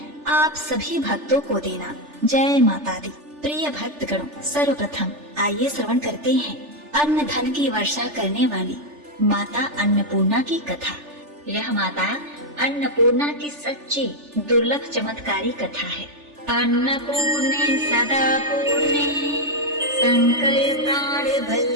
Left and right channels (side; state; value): left; late; 3.4 ms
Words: आप सभी भक्तों को देना। जय माता दी। प्रिय भक्तगणों, सर्वप्रथम आइए श्रवण करते हैं अन्न धन की वर्षा करने वाली माता अन्नपूर्णा की कथा। यह माता अन्नपूर्णा की सच्ची दुर्लभ चमत्कारी कथा है। अन्नपूर्णे सदा पूर्णे संकर प्राण